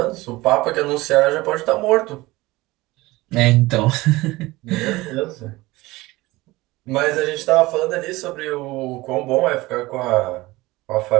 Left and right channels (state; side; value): quieter; left; 20.0 dB